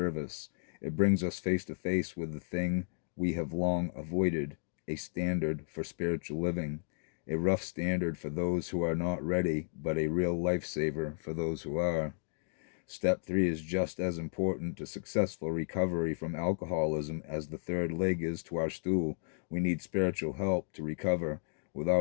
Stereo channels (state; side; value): silent; right; digital silence